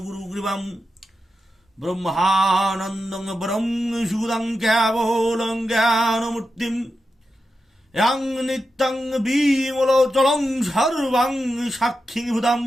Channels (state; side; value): normal; both; correlation 0.89